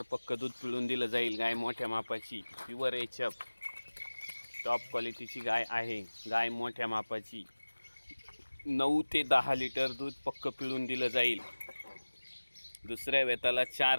पक्क दूध पिळून दिलं जाईल। गाय मोठ्या मापाची प्युअर एच.एफ. टॉप क्वालिटीची गाय आहे। गाय मोठ्या मापाची 9 ते 10 लिटर दूध पक्क पिळून दिलं जाईल। दुसऱ्या वेताला 4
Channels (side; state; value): both; inverted; correlation -1.00